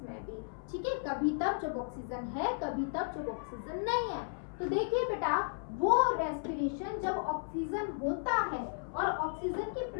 में भी। ठीक है, कभी तब जब ऑक्सीजन है, कभी तब जब ऑक्सीजन नहीं है। तो देखिए बेटा, वो रेस्पिरेशन जब ऑक्सीजन होता है और ऑक्सीजन की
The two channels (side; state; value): right; silent; 55 dB below the other